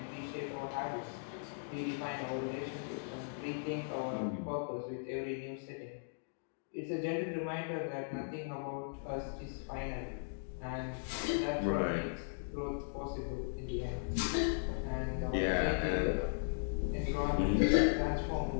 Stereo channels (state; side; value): silent; right; digital silence